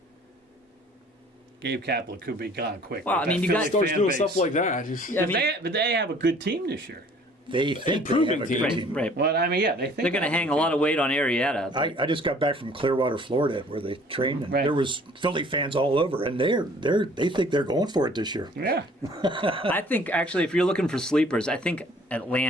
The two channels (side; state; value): both; normal; correlation 0.54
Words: Gabe Kapler could be gone quick. Well, you got starts doing stuff like that. But they have a good team this year. They think they have a good team. Right. Well, they think they're going to hang a lot of weight on Arietta. I just got back from Clearwater, Florida, where they trained, and Right. there was Philly fans all over, and they think they're going for it this year. Yeah. I think, actually, if you're looking for sleepers, I think